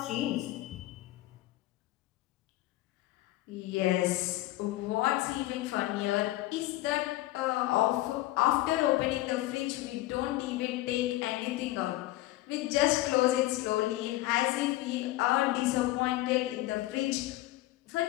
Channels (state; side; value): quieter; right; 17.0 dB